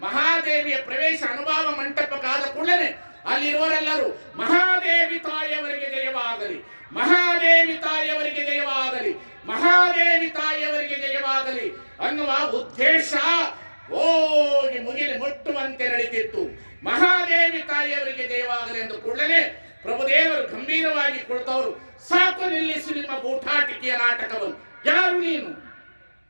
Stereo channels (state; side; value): inverted; both; correlation -1.00